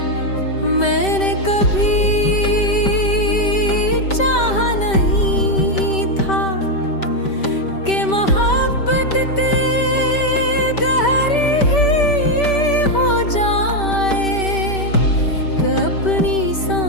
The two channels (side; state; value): right; late; 5.2 ms